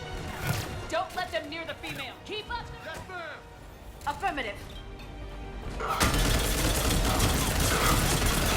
Don't let them near the female! Keep up! Yes, ma'am! Affirmative.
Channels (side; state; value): both; identical; correlation 1.00